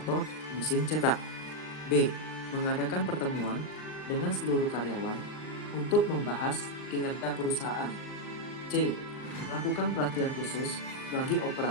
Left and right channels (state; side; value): late; right; 39 ms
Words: mesin cetak. B. Mengadakan pertemuan dengan seluruh karyawan untuk membahas kinerja perusahaan. C. Melakukan pelatihan khusus bagi